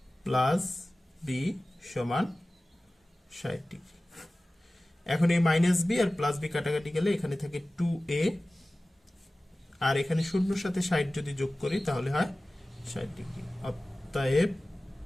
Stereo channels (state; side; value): normal; both; correlation 0.97